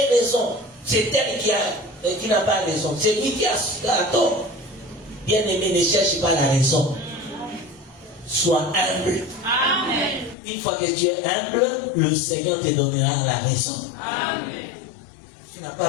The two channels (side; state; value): right; drops out; at 10.4 s